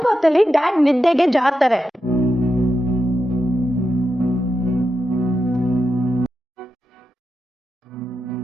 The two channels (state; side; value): normal; both; correlation 0.88